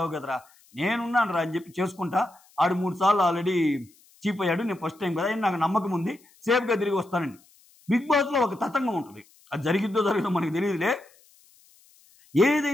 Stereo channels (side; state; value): left; noise; hiss, 29 dB below the sound